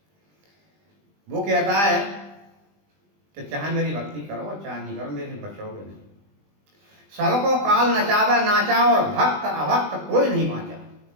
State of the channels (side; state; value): left; late; 20 ms